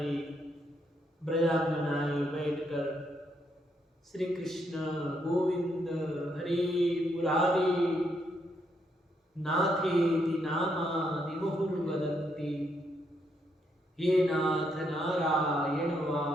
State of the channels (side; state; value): both; normal; correlation 0.76